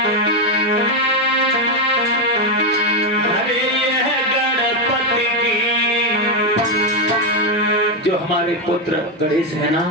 अरे ये गणपति की, जो हमारे पुत्र गणेश है ना,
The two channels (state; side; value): normal; both; correlation 0.07